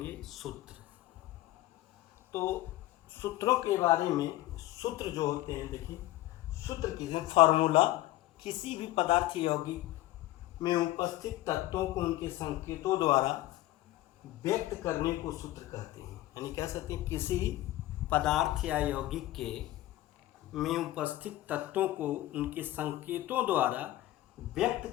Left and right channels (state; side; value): quieter; right; 15.9 dB